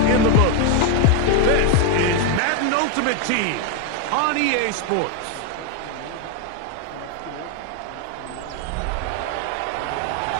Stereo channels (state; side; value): different; both; correlation 0.01